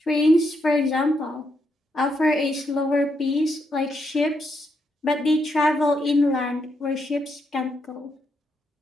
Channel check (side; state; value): both; normal; correlation 0.79